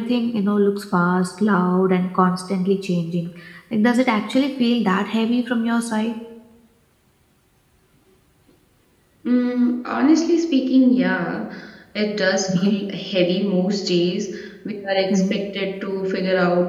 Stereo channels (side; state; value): both; identical; correlation 1.00